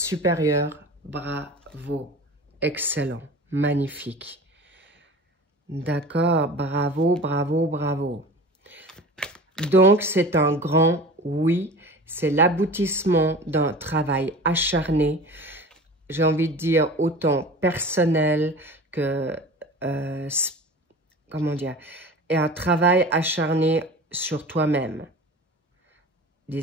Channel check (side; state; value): both; normal; correlation 0.37